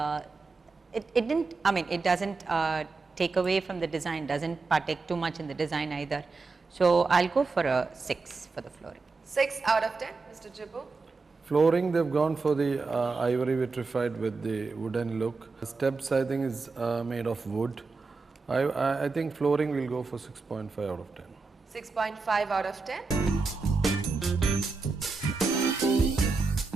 it didn't, I mean, it doesn't take away from the design, doesn't partake too much in the design either. So I'll go for a 6 for the flooring. 6 out of 10, Mr. Jibbu. Flooring, they've gone for the ivory vitrified with the wooden look. Steps, I think, is made of wood. I think flooring will go for 6.5 out of 10. 6.5 out of 10.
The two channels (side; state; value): left; quieter; 4.1 dB